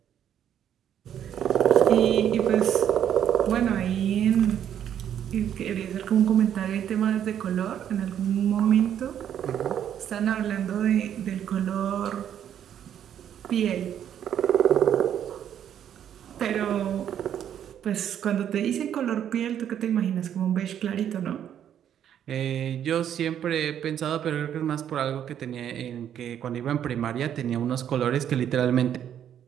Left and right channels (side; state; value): left; quieter; 9.7 dB